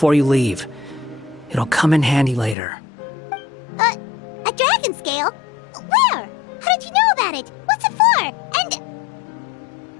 you leave. It'll come in handy later. A dragon scale? Where? How did you know about it? What's it for? And...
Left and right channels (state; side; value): drops out; right; at 2.6 s